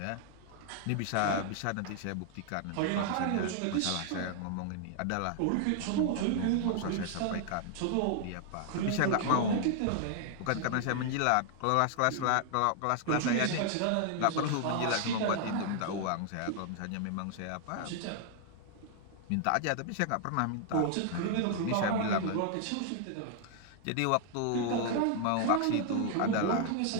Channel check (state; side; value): different; both; correlation 0.00